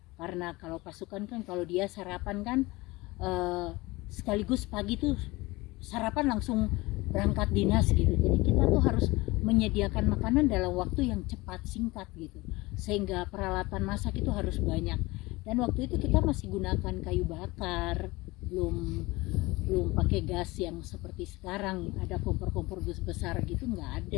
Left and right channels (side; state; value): right; quieter; 21.7 dB